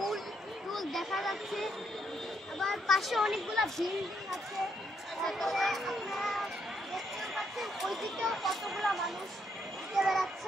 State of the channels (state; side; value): normal; both; correlation 0.75